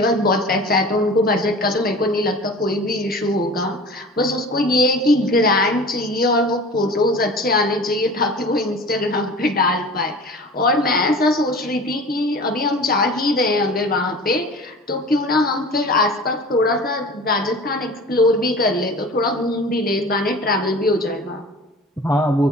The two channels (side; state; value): both; normal; correlation 0.39